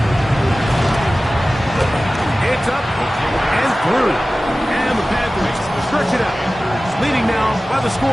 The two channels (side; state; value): both; normal; correlation 0.96